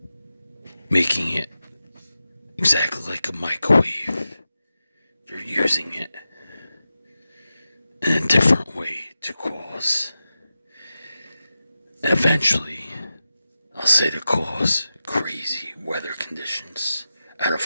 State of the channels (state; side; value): inverted; both; correlation -0.92